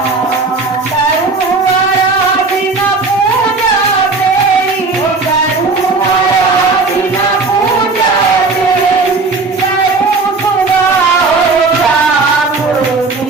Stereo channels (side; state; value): left; quieter; 3.9 dB